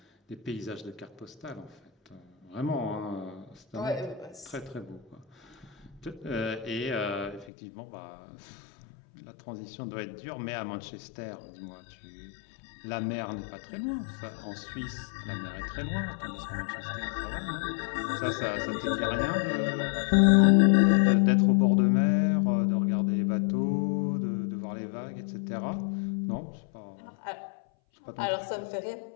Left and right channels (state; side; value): drops out; right; at 7.5 s